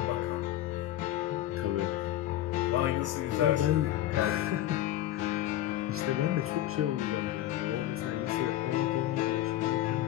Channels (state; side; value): quieter; right; 13.6 dB